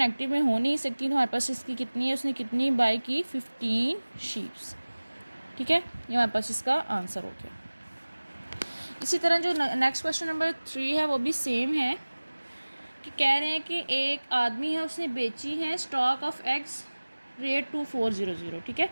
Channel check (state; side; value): inverted; both; correlation -1.00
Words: में हो नहीं सकती, तो हमारे पास इसकी कितनी है, उसने कितनी बाई की 15 शीप्स। ठीक है, ये हमारे पास इसका आंसर हो गया। इसी तरह जो नेक्स्ट क्वेश्चन नंबर 3 है वो भी सेम है कि कह रहे हैं कि एक आदमी है, उसने बेची है स्टॉक ऑफ एग्स रेट 2400। ठीक है,